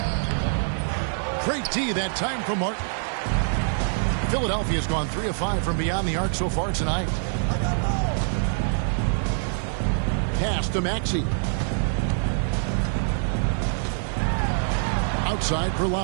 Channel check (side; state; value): left; silent; digital silence